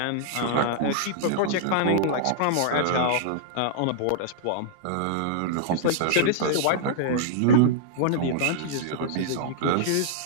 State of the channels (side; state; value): both; different; correlation -0.01